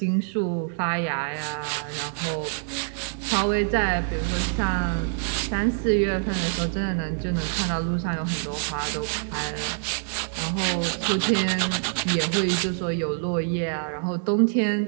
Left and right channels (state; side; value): silent; left; digital silence